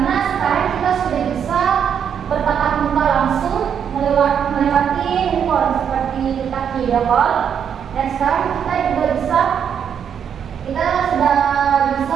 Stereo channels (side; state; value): left; quieter; 8.0 dB